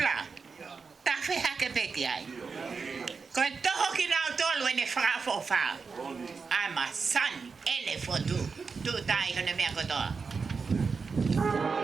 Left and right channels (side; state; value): left; quieter; 5.0 dB